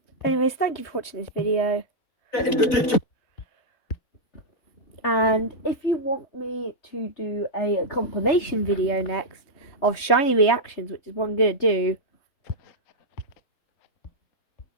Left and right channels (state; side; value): late; right; 3.3 ms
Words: Anyways, thank you for watching this video. And if you want me to do a compilation video next of shiny reactions, which is what I'm going to do,